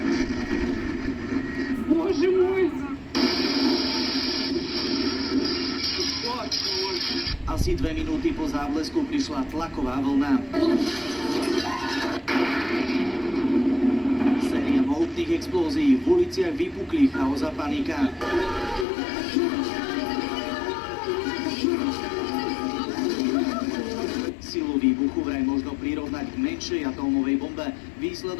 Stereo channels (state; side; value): drops out; right; at 18.9 s